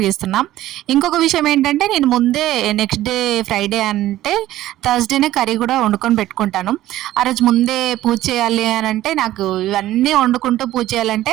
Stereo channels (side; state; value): left; quieter; 14.5 dB